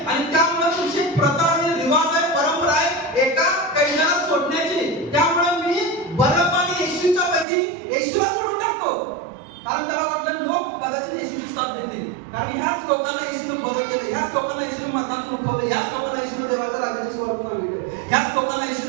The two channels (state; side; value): drops out; left; at 7.5 s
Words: आणि त्यामुळे तुमची प्रथा आणि रिवाज आहे, परंपरा आहे एका कैद्याला सोडण्याची, त्यामुळे मी बरब्बा आणि येशूच्या पैकी येशूला सोडून टाकतो. कारण त्याला वाटलं लोक कदाचित येशूची साथ देतील, कारण ह्याच लोकांना येशूने बदल केले, ह्याच लोकांना येशूने मतांत उठवले, ह्याच लोकांना येशूने देवाच्या राज्याची सुरुवात केली, ह्याच लोकांना